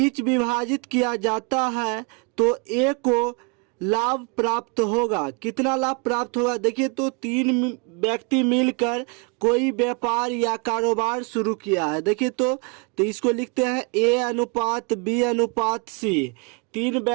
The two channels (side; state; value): left; quieter; 33.0 dB